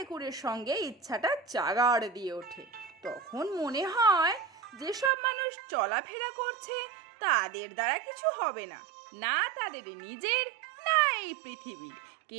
সঙ্গে ইচ্ছাটা জাগাড় দিয়ে ওঠে। তখন মনে হয় যেসব মানুষ চলাফেরা করছে তাদের দ্বারা কিছু হবে না, না তাদের নিজের, না এই পৃথিবীর।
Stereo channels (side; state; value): left; drops out; at 5.1 s